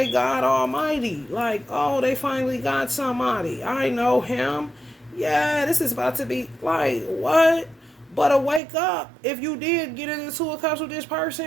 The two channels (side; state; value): left; drops out; at 8.6 s